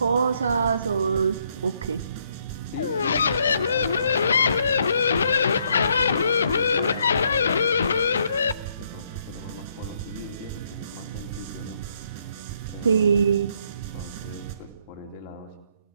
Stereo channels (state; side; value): inverted; both; correlation -0.71